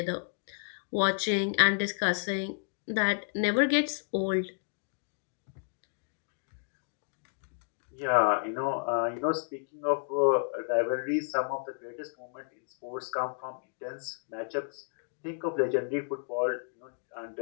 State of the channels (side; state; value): right; silent; digital silence